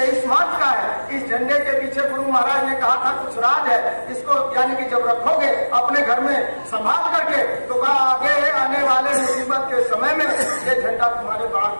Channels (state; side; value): inverted; both; correlation -1.00